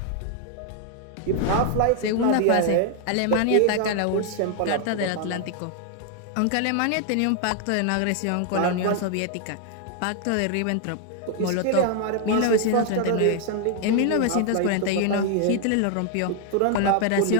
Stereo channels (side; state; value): both; different; correlation 0.00